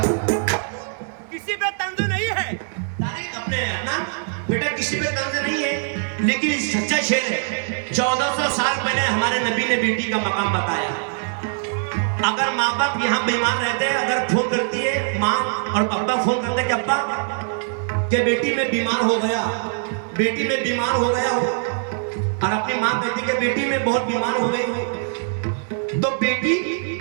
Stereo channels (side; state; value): left; silent; digital silence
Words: किसी पे तंज नहीं है। अपने ना बेटा किसी पे तंज नहीं है, लेकिन सच्चा शेर है। 1400 साल पहले हमारे नबी ने बेटी का मकाम बताया। अगर माँ बाप यहाँ बीमार रहते हैं, अगर फोन करती है माँ और पापा फोन करते कि अब्बा कि बेटी में बीमार हो गया, बेटी में बीमार हो गया हो, और अपनी माँ कहती कि बेटी में बहुत बीमार हो गई हो, तो बेटी